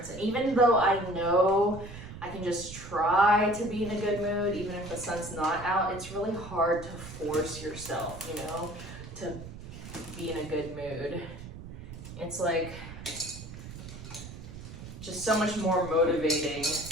And even though I know I can just try to be in a good mood, even if the sun's not out, it's really hard to force yourself, you know, to be in a good mood. It's like just so much more motivating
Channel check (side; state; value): right; noise; rumble, 13 dB below the sound